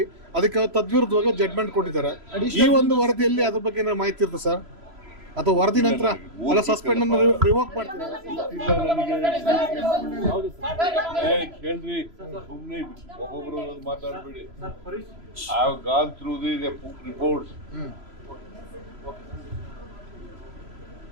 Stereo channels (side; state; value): left; late; 3.0 ms